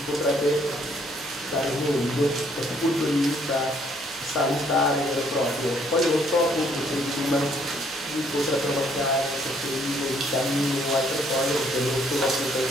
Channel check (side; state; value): both; normal; correlation 0.66